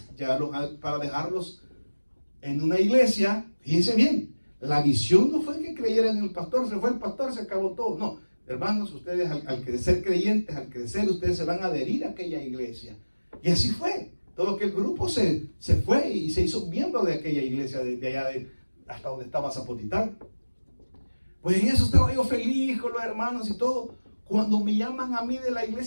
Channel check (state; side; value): inverted; both; correlation -1.00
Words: para dejarlos en una iglesia. Fíjense bien, la visión no fue que creyeran en el pastor, se fue el pastor, se acabó todo, no, hermanos, ustedes al crecer creyentes, al crecer, ustedes se van a adherir a aquella iglesia, y así fue. Todo aquel grupo se fue y se hizo miembro de aquella iglesia de allá hasta donde estaba Zapotitán. Pues en eso estaba yo feliz con los hermanos y todo. Cuando me llaman a mí de la